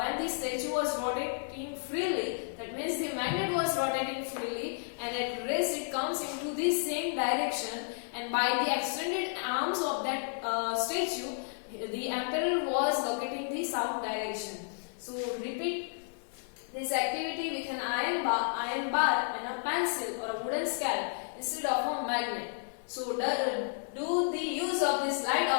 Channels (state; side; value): silent; right; 56 dB below the other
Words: the statue was rotating freely, that means the magnet was rotating freely, and at rest it comes into the same direction, and by the extended arms of that statue, the emperor was locating the south direction. So repeat this activity with an iron bar and a pencil or a wooden scale instead of a magnet. So do the use of these light